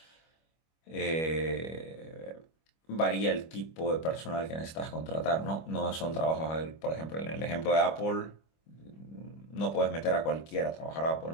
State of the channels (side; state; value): right; late; 25 ms